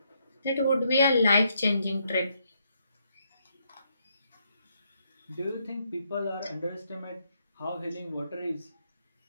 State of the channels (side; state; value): both; inverted; correlation -0.75